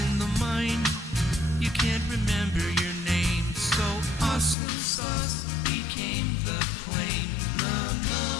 in the mine you can't remember your name. So awesome sauce became the claim. La la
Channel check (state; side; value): drops out; right; at 4.5 s